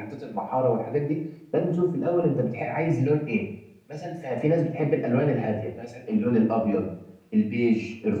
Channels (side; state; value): both; identical; correlation 1.00